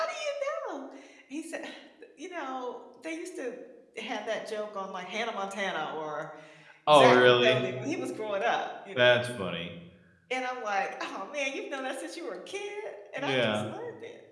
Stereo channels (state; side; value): identical; both; correlation 1.00